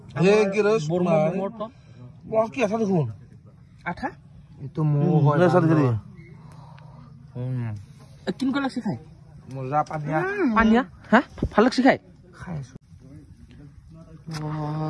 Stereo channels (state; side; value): identical; both; correlation 1.00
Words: হে কি রে বর্মা মোর টপ বস কি আছে দেখুন আঠা এতো মো হয় না সাথে করে কিন কো লাগছে খাই মজা পানিয়া পানিয়া হ্যাঁ ভাল লাগছে খাই খাইছো